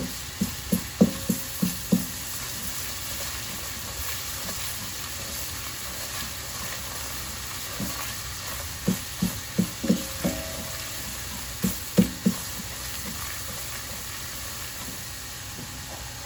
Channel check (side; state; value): both; identical; correlation 1.00